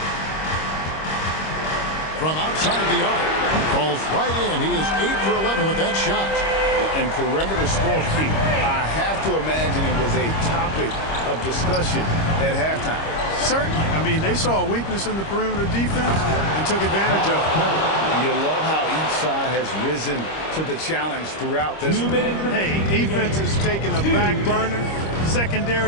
From outside the arc. Falls right in. He is 8 for 11 with that shot. And perimeter scoring, I have to imagine it was a topic of discussion at halftime. Certainly. I mean, they saw a weakness in the perimeter defense and took advantage of it. You love how each side has risen to the challenge throughout this. Hey, defense is taking a back burner,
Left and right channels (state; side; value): late; right; 25 ms